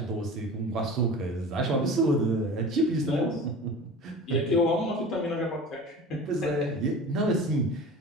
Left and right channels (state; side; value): normal; both; correlation 0.37